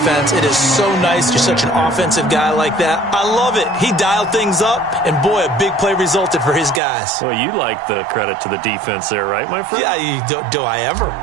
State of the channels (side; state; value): left; drops out; at 6.8 s